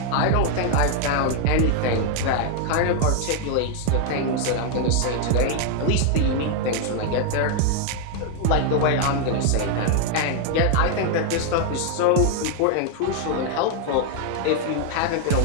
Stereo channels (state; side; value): different; both; correlation 0.00